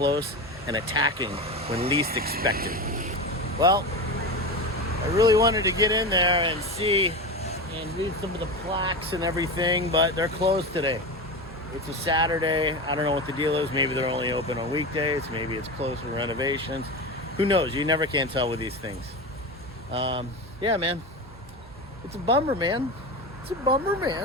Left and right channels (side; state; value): both; normal; correlation 0.23